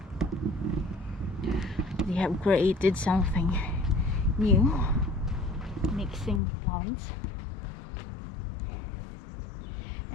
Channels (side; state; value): right; drops out; at 6.4 s